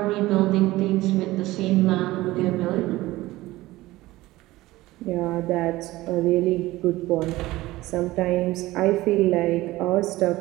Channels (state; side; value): quieter; left; 18.0 dB